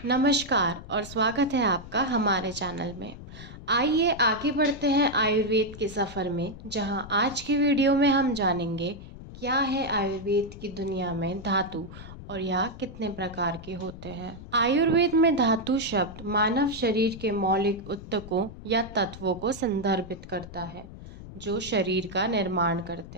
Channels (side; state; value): left; noise; rumble, 14 dB below the sound